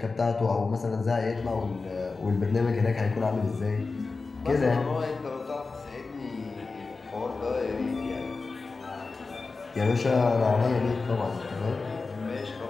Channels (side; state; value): right; quieter; 4.0 dB